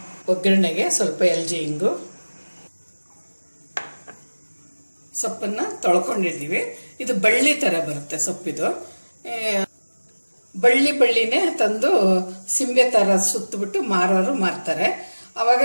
ಒಗ್ಗರಣೆಗೆ ಸ್ವಲ್ಪ ಎಲ್ಚಿ ಹಿಂಗು. ಸೊಪ್ಪನ್ನು ತೊಳ್ಕೊಂಡಿದ್ದೀವಿ. ಇದು ಬಳ್ಳಿ ಥರ ಬರುತ್ತೆ ಸೊಪ್ಪಿದು. ಬಳ್ಳಿನೇ ತಂದು ಸಿಂಬೆ ಥರ ಸುತ್ತಬಿಟ್ಟು ಮಾರೋರು ಮಾರ್ತಾರೆ. ಆವಾಗ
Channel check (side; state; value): both; inverted; correlation -1.00